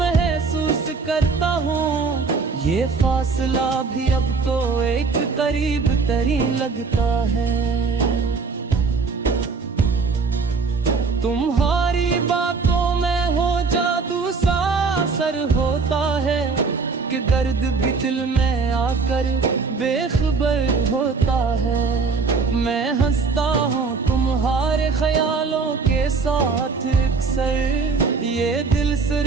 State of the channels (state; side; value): quieter; left; 4.6 dB